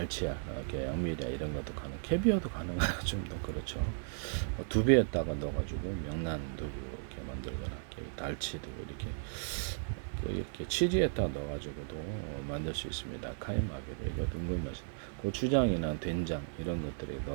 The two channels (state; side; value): silent; left; 54 dB below the other